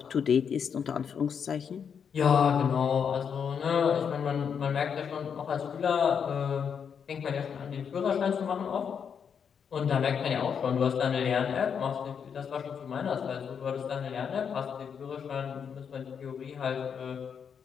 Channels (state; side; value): quieter; right; 7.1 dB